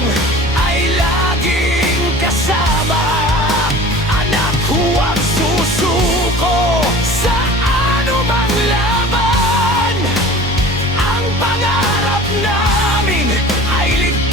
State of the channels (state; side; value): normal; both; correlation 0.41